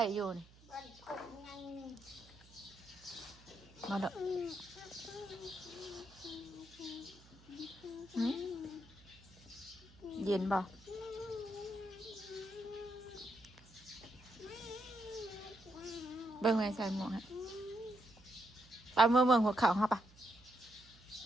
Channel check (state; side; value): noise; right; hum, 24 dB below the sound